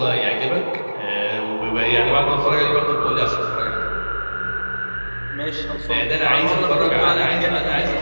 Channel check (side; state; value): both; inverted; correlation -1.00